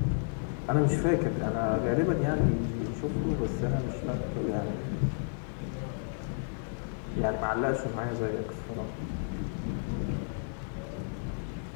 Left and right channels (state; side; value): silent; right; digital silence